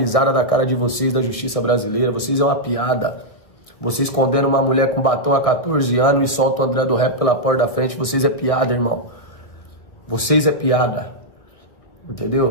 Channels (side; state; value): right; late; 1.6 ms